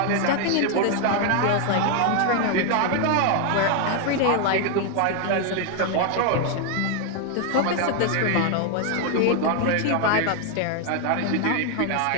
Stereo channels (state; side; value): different; both; correlation 0.00